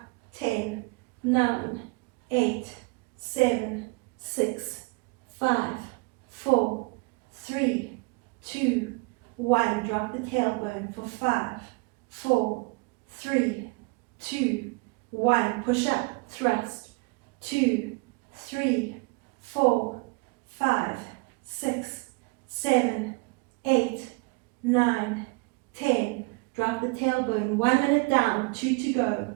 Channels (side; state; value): left; quieter; 28.9 dB